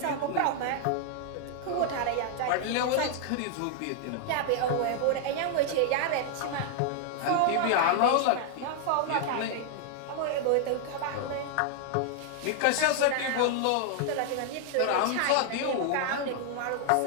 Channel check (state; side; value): different; both; correlation 0.00